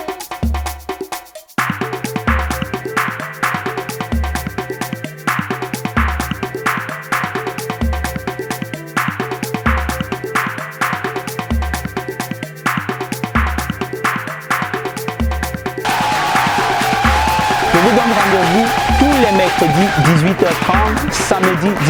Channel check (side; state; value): both; identical; correlation 1.00